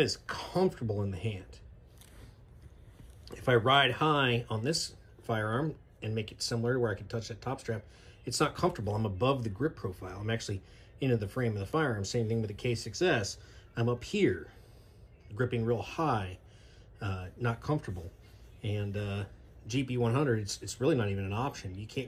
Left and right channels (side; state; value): both; identical; correlation 1.00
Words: comfortable in the hand. If I ride high on this firearm and make it similar to where I can touch that top strap, it's not comfortable. I'm above the grip profile. I'm actually into the frame of the firearm. Same thing with the K6S. I'm up here, gripping real high, not comfortable. And GP100, it's really not even an option. You